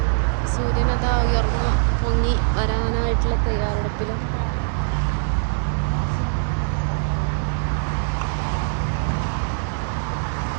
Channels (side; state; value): left; silent; digital silence